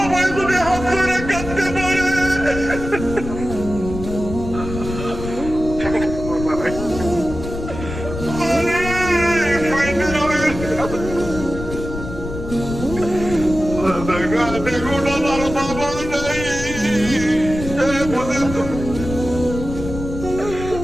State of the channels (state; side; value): noise; left; rumble, 8 dB below the sound